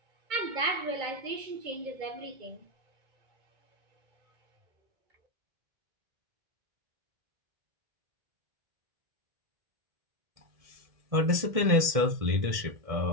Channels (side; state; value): left; late; 1.7 ms